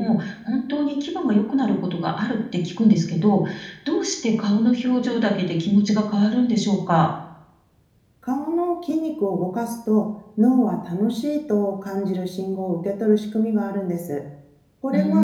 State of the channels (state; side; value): identical; both; correlation 1.00